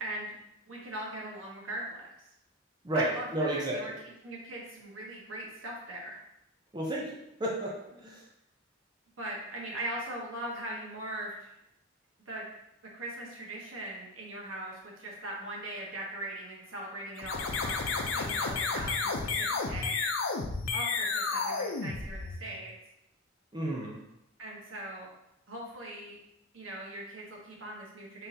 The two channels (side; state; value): both; normal; correlation 0.12